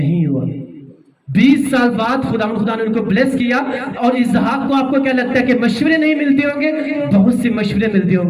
ہوا. 20 سال بعد خدا نے ان کو بلیس کیا. اور اسحاق کو آپ کو کیا لگتا ہے کہ مشورے نہیں ملتے ہوں گے, بہت سے مشورے ملتے ہوں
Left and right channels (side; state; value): both; identical; correlation 1.00